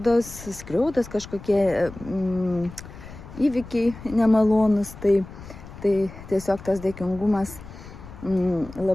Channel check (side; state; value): left; noise; rumble, 15 dB below the sound